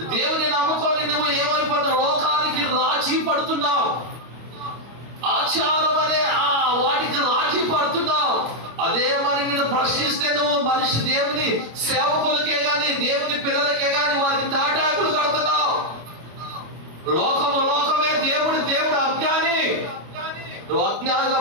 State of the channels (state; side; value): late; left; 25 ms